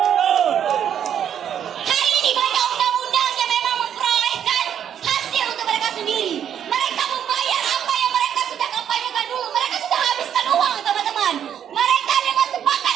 Hari ini banyak undang-undang yang memang memperolehkan hasil untuk mereka sendiri. Mereka membayar apa yang mereka sudah kampanyekan dulu. Mereka sudah habiskan uang, teman-teman. Mereka dengan sepakat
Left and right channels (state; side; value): quieter; left; 9.2 dB